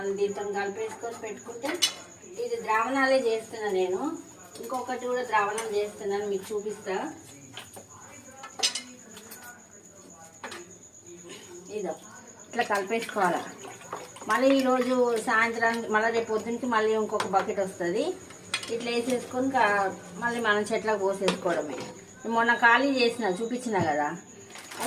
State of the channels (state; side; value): identical; both; correlation 1.00